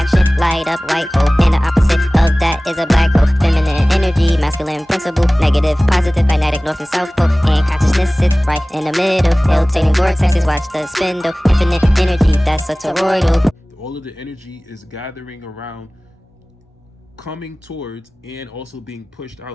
light up white hole, and the opposite of that is a black hole. Feminine energy, masculine principle, negative, positive, magnetic, north and south pole, and consciousness sits right in the middle. Rotating vortexes, watch the spindle, infinite energy, that's a toroidal. All of the energy is gathering around, coming towards, and also being pushed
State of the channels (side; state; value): both; normal; correlation 0.98